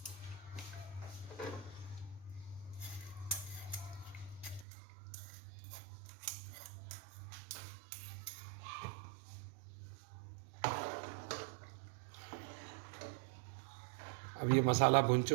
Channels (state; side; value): drops out; left; at 4.7 s